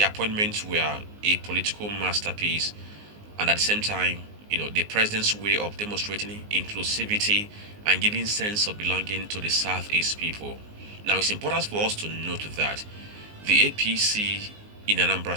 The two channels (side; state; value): left; late; 19 ms